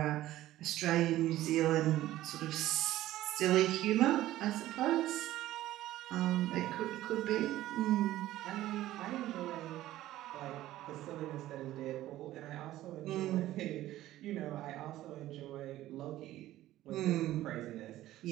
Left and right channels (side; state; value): left; quieter; 14.8 dB